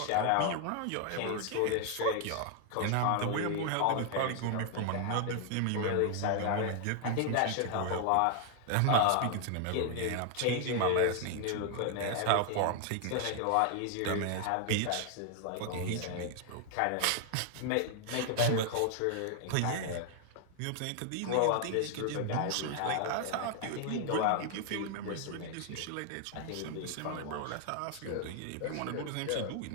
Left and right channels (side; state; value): both; different; correlation 0.00